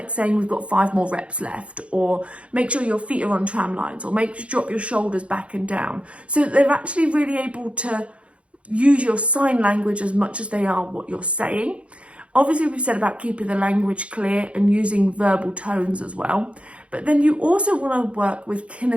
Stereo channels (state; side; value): late; left; 0.061 ms